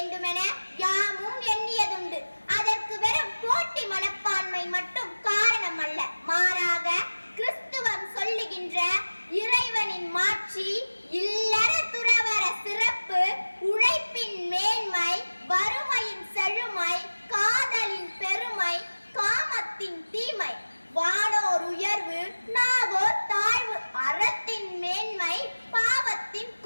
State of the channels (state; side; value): inverted; both; correlation -1.00